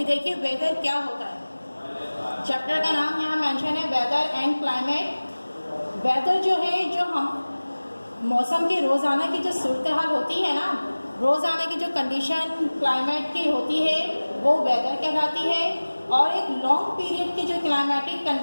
देखिए वेदर क्या होता है। चैप्टर का नाम यहाँ मेंशन है वेदर एंड क्लाइमेट। वेदर जो है, जो हम मौसम की रोज़ाना की जो सूरत हाल होती है ना, रोज़ाना की जो कंडीशन क्लाइमेट की होती है वो वेदर कहलाती है। और एक लॉन्ग पीरियड की जो क्लाइमेटिक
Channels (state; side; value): inverted; both; correlation -1.00